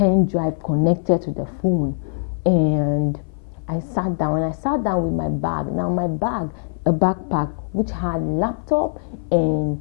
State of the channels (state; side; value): silent; right; 59 dB below the other